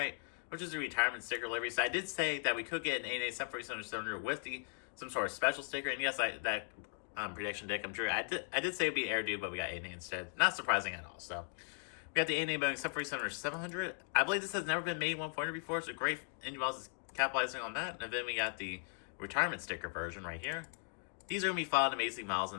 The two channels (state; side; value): silent; right; digital silence